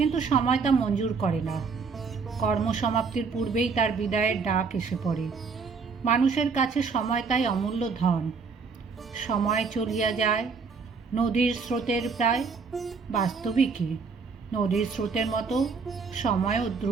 সময় তা মঞ্জুর করে না। কর্মসমাপ্তির পূর্বেই তার বিদায়ের ডাক এসে পড়ে। মানুষের কাছে সময় তাই অমূল্য ধন। সময় চলিয়া যায় নদীর স্রোতের প্রায়। বাস্তবিকই নদীর স্রোতের মতো সময়ও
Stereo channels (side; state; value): left; quieter; 5.1 dB